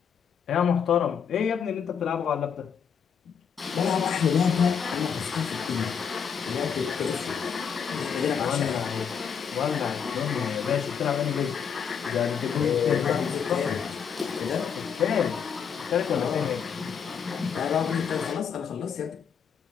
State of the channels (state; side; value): quieter; right; 7.1 dB